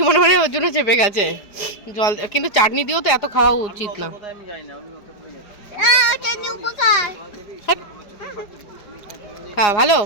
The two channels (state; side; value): late; right; 4.8 ms